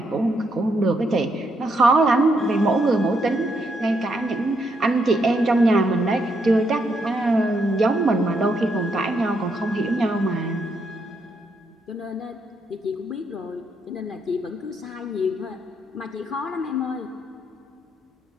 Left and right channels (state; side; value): normal; both; correlation 0.77